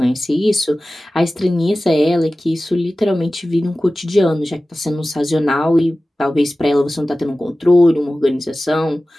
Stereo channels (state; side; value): normal; both; correlation 0.96